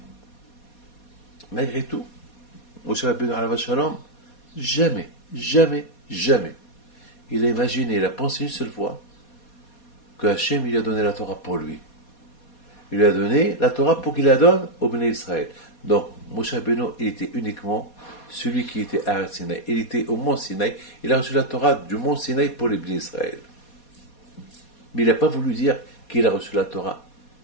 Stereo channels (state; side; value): late; right; 4.2 ms